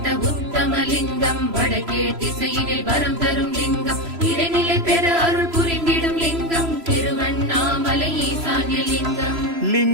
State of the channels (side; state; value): left; late; 3.0 ms